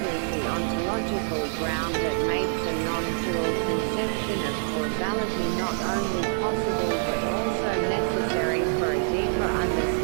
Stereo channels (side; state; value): left; silent; 59 dB below the other